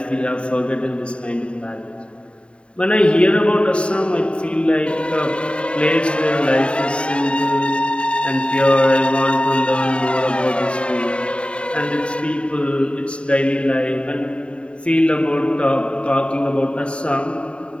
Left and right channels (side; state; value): right; late; 0.057 ms